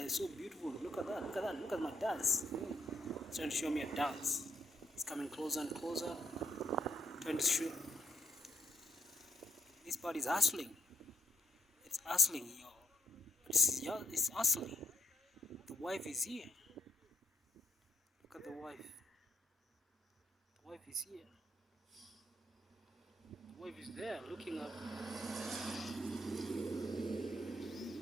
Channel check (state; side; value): normal; both; correlation 0.73